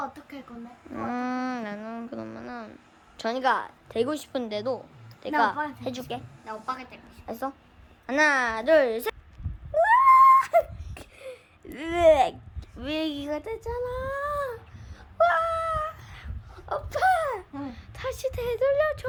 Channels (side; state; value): both; identical; correlation 1.00